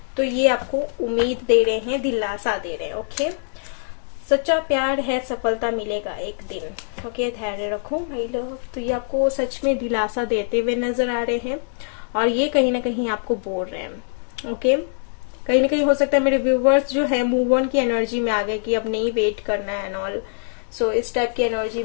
तो ये आपको उम्मीद दे रहे हैं, दिलासा दे रहे हैं। ओके, सच्चा प्यार है, सफलता मिलेगा एक दिन। ओके, धैर्य रखो माय लव। तो ये आपको सच में दिलासा देते हुए नजर आ रहे हैं, और ये कहीं ना कहीं आपको बोल रहे हैं। ओके, कहीं ना कहीं हो सकता है मेरे व्यूवर्स जो है मूव ऑन की एनर्जी में आ गए कि अब नहीं वेट करना है एंड ऑल। सो इस टाइप की एनर्जी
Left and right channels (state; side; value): silent; right; digital silence